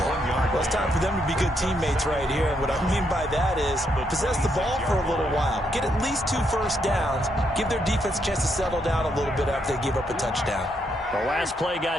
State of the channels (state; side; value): normal; both; correlation 0.77